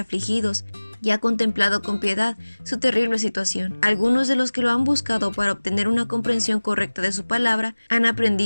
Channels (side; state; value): both; inverted; correlation -1.00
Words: y ha contemplado con piedad su terrible situación. Algunos de los que lo han buscado para obtener una comprensión correcta de su palabra han